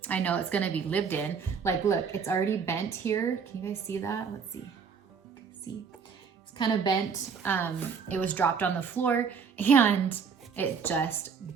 I know it's gonna be lived in. Like, look, it's already bent here. Can you guys see that? Let's see. See, it's kind of bent. It was dropped on the floor and it just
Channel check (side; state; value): left; quieter; 6.1 dB